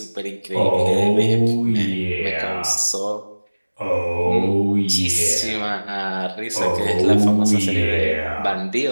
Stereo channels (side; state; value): both; inverted; correlation -1.00